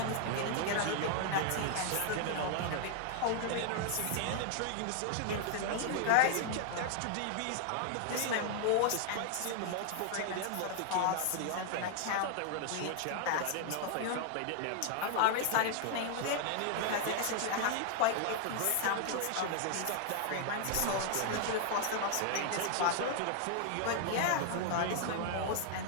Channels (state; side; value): different; both; correlation 0.00